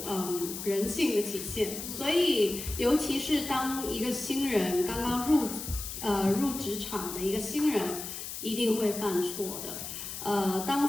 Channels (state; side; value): noise; left; hiss, 8 dB below the sound